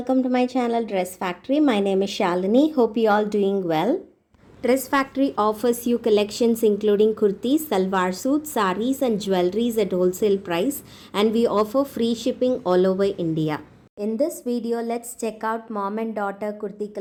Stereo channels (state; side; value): identical; both; correlation 1.00